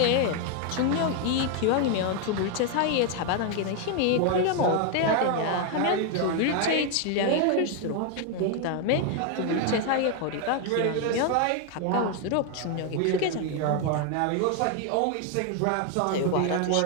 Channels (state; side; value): different; both; correlation 0.01